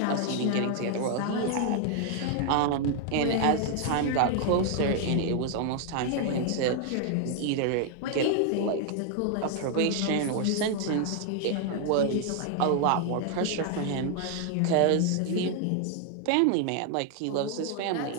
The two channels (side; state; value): both; different; correlation 0.00